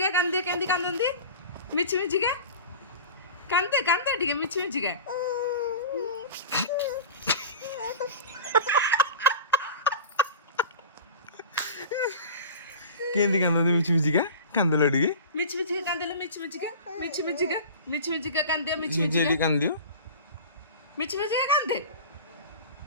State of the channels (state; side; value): inverted; both; correlation -0.35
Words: कांदे कैंदी कांदन दी मिठी मिठी का कांदे कांदे ठीक है मिठी मिठी का कैंदी कांदन दी मिठी मिठी का कांदल अड़ी मिठी मिठी का कांदल मिठी मिठी का मिठी मिठी का कांदे मिठी मिठी मिठी का कांदियो मिठी मिठी का कांदे